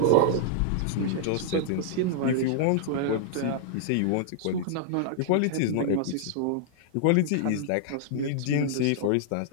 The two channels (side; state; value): both; different; correlation -0.01